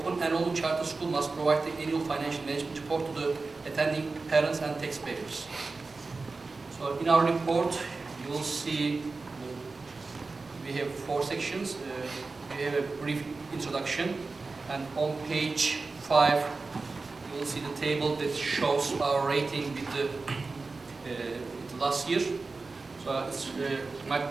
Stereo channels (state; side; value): quieter; left; 3.9 dB